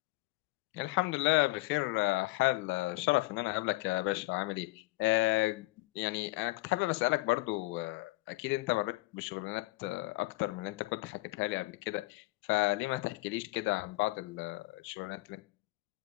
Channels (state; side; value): quieter; right; 21.4 dB